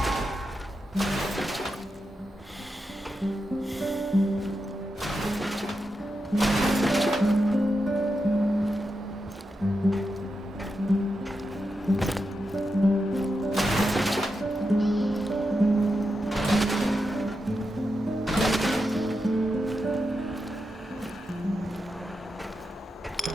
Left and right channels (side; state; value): both; normal; correlation 0.87